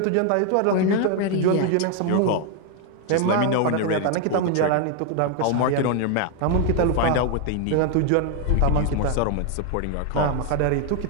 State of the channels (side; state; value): both; different; correlation 0.01